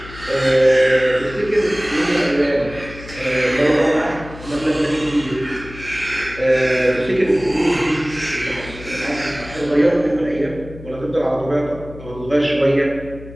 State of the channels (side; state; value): left; noise; hum, 16 dB below the sound